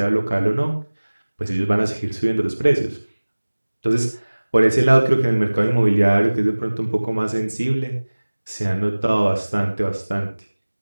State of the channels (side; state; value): both; inverted; correlation -1.00